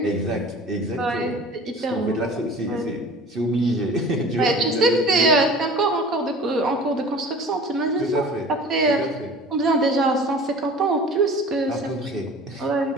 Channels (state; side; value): normal; both; correlation 0.42